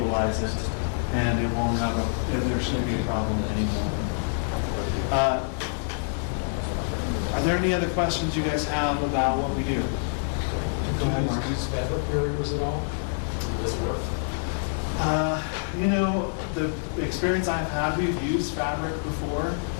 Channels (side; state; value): right; silent; 61 dB below the other